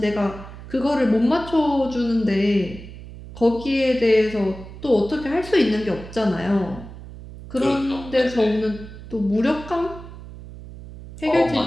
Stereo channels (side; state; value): right; noise; hum, 14 dB below the sound